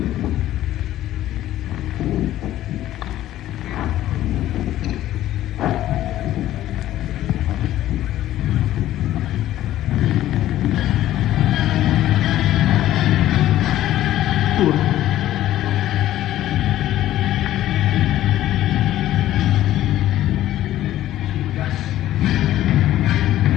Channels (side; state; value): right; quieter; 13.6 dB